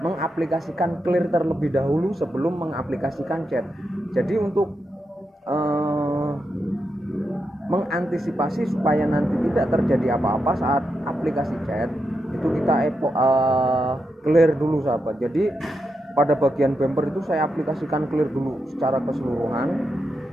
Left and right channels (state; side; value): normal; both; correlation 0.85